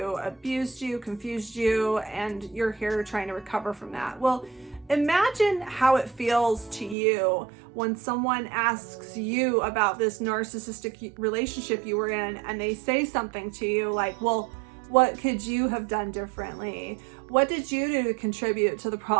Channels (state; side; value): drops out; left; at 7.0 s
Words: abused you, confused you, and you're here trying to recover from that. Well, imagine how it feels to you when someone asks you about this narcissistic relationship you were in and they say something to you like, well, what could you have done differently? What did you do to contribute to the